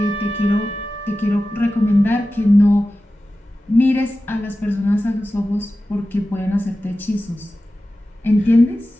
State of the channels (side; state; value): both; normal; correlation 0.94